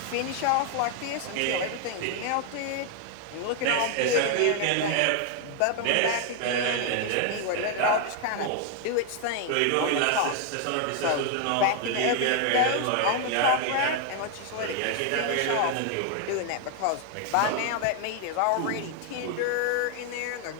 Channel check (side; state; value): both; different; correlation 0.00